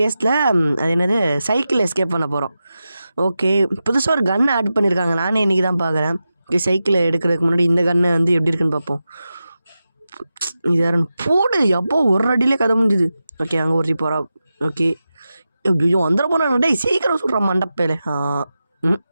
அது என்னது சைக்கிள் எஸ்கேப் பண்ண போகிறோம். ஓகே, புதுசாக ஒரு கன் ஆட் பண்ணியிருக்காங்க. நானே இன்றைக்கி தான் பார்க்குறேன். ஓகே, சைக்கிளை எடுக்கிறதுக்கு முன்னாடி இந்த கன்னை வந்து எப்படி இருக்குன்னு பார்ப்போம். இது யாருன்னு போடு. எப்போ ஒரு அடியிலே கதை முடிஞ்சுது. ஓகே, அங்கே ஒருத்தி போகிறா. ஓகே, ஐயோ வந்துட போனாங்க. டேய் சீக்கிரம் சுடுறான் மண்டப்பேல.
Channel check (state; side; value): inverted; both; correlation -0.92